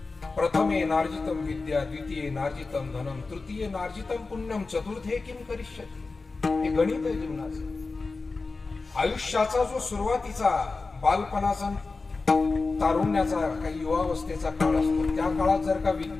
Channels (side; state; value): right; quieter; 3.9 dB